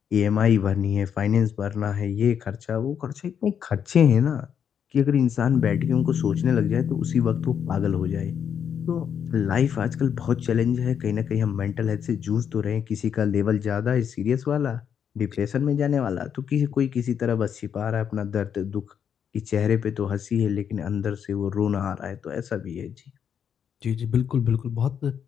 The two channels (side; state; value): right; quieter; 8.0 dB